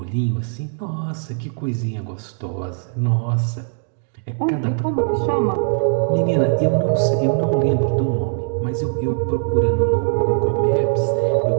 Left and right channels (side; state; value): left; silent; digital silence